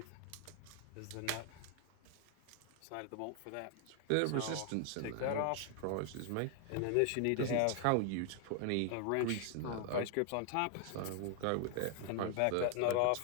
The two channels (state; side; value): different; both; correlation 0.00